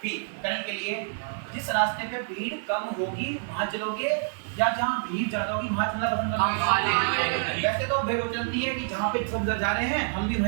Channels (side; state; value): left; silent; digital silence